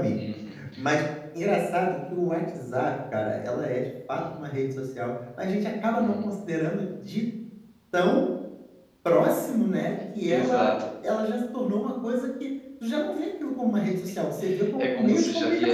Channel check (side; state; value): both; identical; correlation 1.00